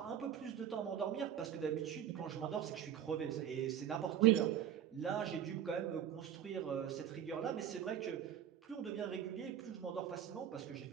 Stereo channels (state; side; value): quieter; left; 10.0 dB